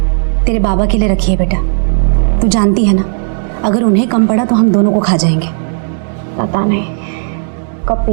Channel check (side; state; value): left; silent; digital silence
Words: तेरे बाबा के लिए रखी है बेटा। तू जानती है ना, अगर उन्हें कम पड़ा तो हम दोनों को खा जाएंगे। पता नहीं कब